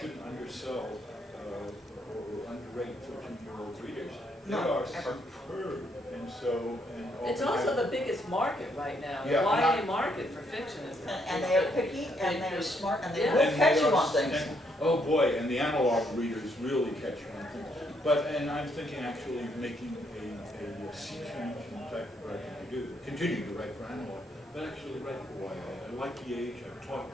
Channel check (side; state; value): both; normal; correlation 0.73